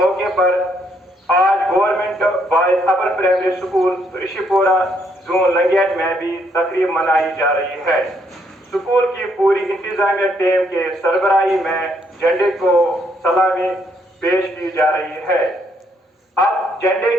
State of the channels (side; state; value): both; normal; correlation 0.71